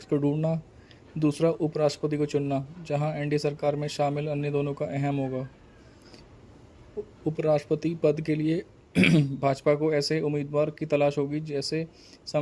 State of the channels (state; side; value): identical; both; correlation 1.00